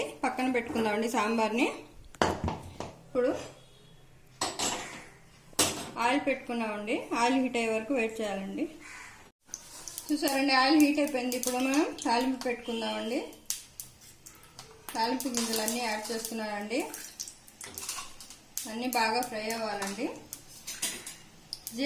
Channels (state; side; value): identical; both; correlation 1.00